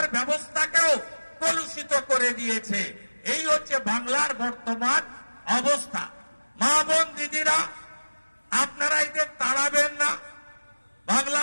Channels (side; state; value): both; inverted; correlation -1.00